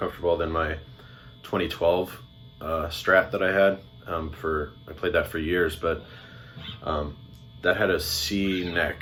than my 2012 Strat that I had. I played that for years, but that had a C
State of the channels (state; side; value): identical; both; correlation 1.00